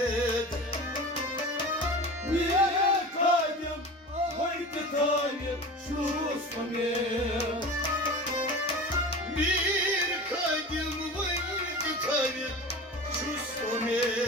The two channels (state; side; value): normal; both; correlation 0.33